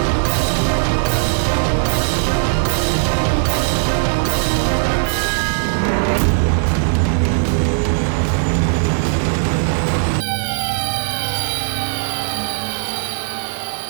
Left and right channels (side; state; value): left; silent; digital silence